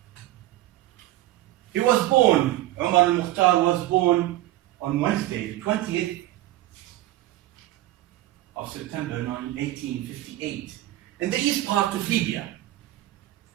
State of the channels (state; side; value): quieter; left; 15.7 dB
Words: He was born, Umar al-Mukhtar was born on Wednesday, the 20th of September 1858, in the east part of Libya,